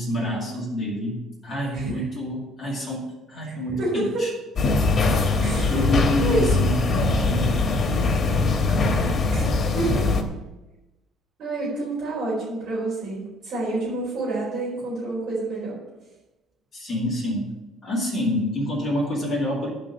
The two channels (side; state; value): both; normal; correlation 0.59